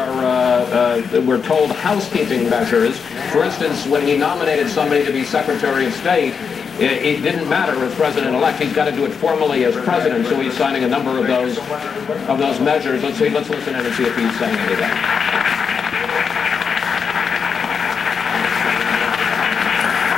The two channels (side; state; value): right; quieter; 6.1 dB